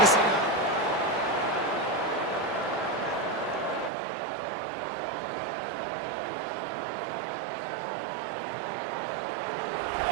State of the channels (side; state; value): left; drops out; at 3.9 s